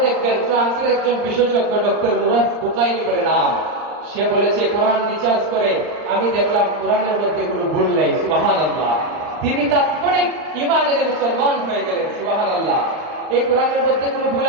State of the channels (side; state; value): left; late; 39 ms